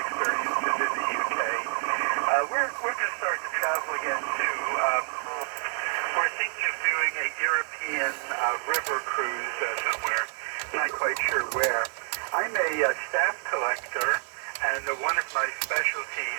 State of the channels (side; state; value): left; quieter; 37.7 dB